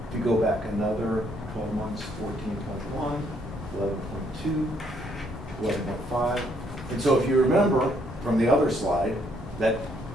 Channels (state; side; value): normal; both; correlation 0.69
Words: If you go back another 12 months, 14.1, 11.2, 11.5. And so if you remember from the other slide, that